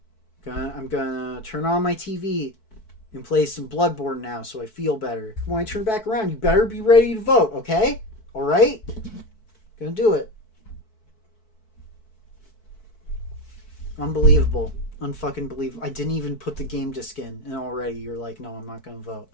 I'm gonna turn on my TV and play some Bloodborne now so I feel better. When I turn back around, you better be ready to vote, okay? Alright? Gonna do it. Unbelievable. Unfucking believable. I didn't even put the game disc in, and already you're like, no, I'm not gonna vote.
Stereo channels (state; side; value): late; right; 4.6 ms